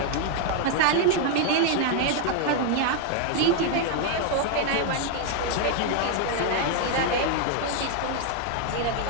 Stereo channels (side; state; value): both; different; correlation 0.00